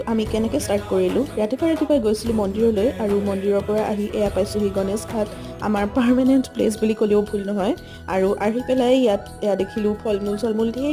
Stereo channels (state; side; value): identical; both; correlation 1.00